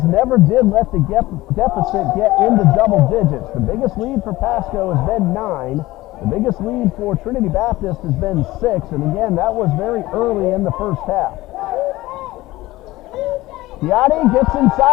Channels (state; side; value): quieter; right; 18.1 dB